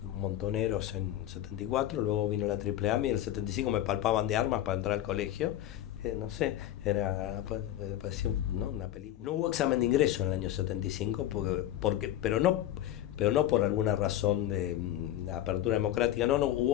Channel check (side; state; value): right; quieter; 12.6 dB